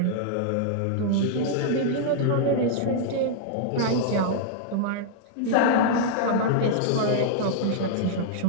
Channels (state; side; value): different; both; correlation -0.01